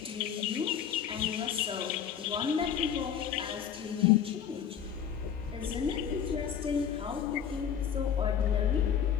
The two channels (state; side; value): quieter; right; 8.4 dB